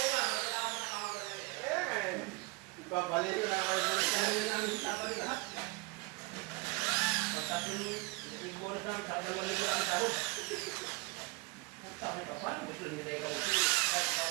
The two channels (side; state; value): left; quieter; 26.3 dB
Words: Kaya nga eh. Papalayin ko na kayo bonus niya. Baliin namin sa Sabado lahat. Pagkatapos yung bonus namin, sa dalawang libo ang sahod. Sabi ka, paano gusto nila ikaw? Kahit ikaw